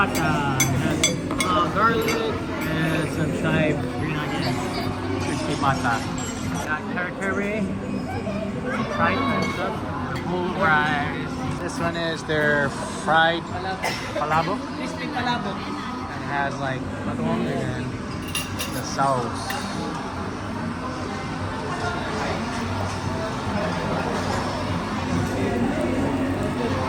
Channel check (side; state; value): both; identical; correlation 1.00